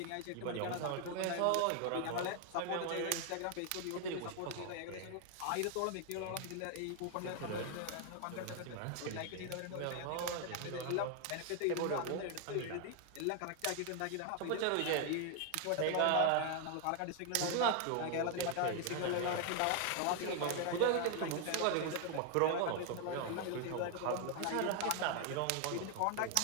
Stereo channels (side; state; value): both; different; correlation 0.01